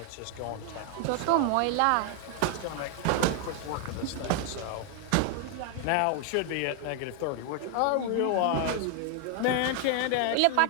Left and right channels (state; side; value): different; both; correlation 0.00